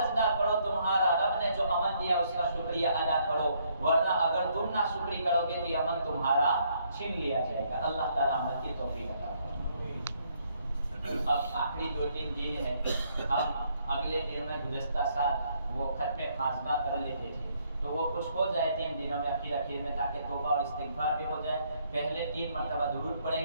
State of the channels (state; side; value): inverted; both; correlation -0.70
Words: کرو، تمہارا رب نے جو امن دیا اس کا شکریہ ادا کرو، ورنہ اگر تم نہ شکری کرو گے تو یہ امن تمہارا چھین لیا جائے گا. اللہ تعالیٰ عمل کی توفیق عطا فرمائے. اب آخری 2-3 دن ہیں. ہم اگلے دن میں گزشتہ سال وہ ختم خاتمہ کر لیتے تھے تو وہ کچھ ہو جائے 3 دنوں میں اخیر میں تاکہ توبہ اور استغفار بھی ہو جائے. پہلے 3 مرتبہ درود